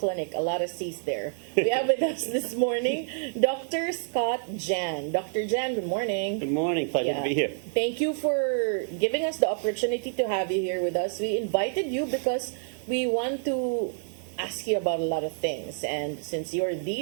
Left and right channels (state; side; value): silent; left; 59 dB below the other